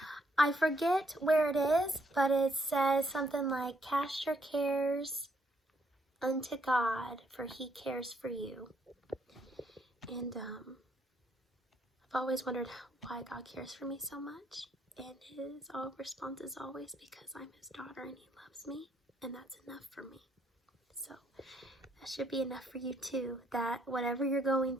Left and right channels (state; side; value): normal; both; correlation 0.72